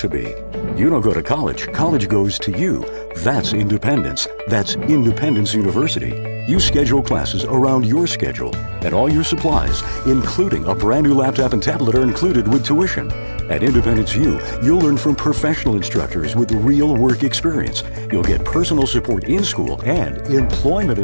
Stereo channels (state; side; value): inverted; both; correlation -1.00